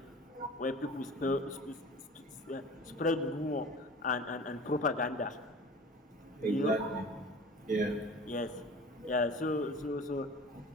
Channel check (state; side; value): normal; both; correlation 0.41